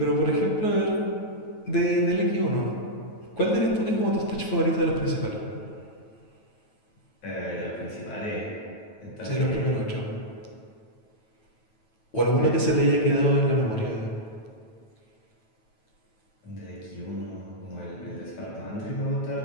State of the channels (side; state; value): right; late; 9.2 ms